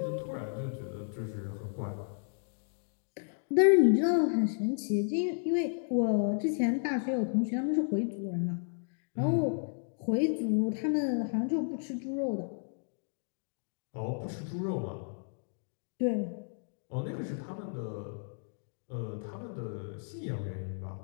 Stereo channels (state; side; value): silent; right; digital silence